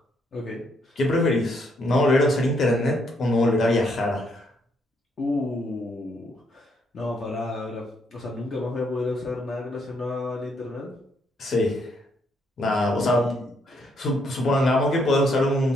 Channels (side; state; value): both; normal; correlation 0.73